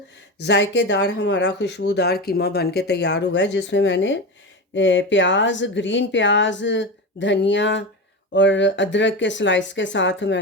जायकेदार हमारा खुशबूदार कीमा बन के तैयार हुआ है, जिसमें मैंने प्याज, ग्रीन प्याज, धनिया और अदरक के स्लाइस के साथ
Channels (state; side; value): normal; both; correlation 0.22